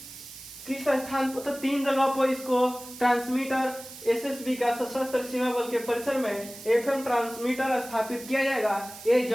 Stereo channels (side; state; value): right; noise; hiss, 15 dB below the sound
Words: स्थान पर? तो 3 जगह पर इसको ट्रांसमीटर एसएसबी का सशस्त्र सीमा बल के परिसर में एफएम ट्रांसमीटर स्थापित किया जाएगा। ये